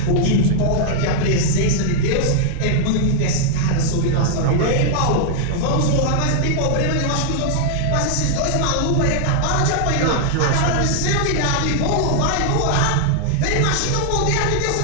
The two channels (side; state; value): both; different; correlation -0.01